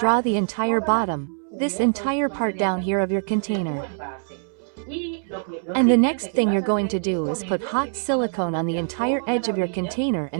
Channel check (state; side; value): silent; left; 63 dB below the other